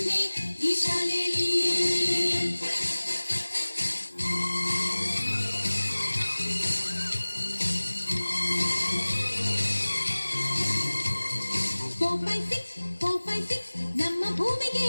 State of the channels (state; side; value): inverted; both; correlation -1.00